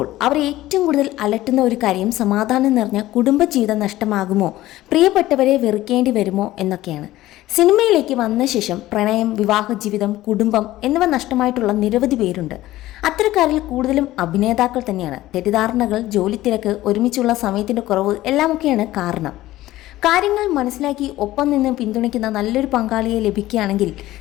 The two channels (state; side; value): quieter; right; 15.9 dB